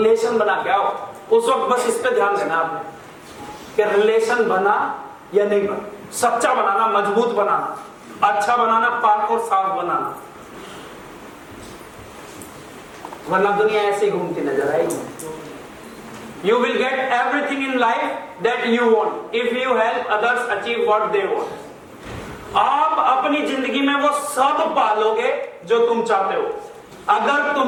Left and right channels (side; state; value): both; identical; correlation 1.00